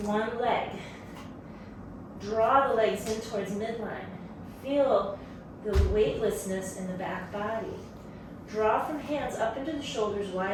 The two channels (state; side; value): identical; both; correlation 1.00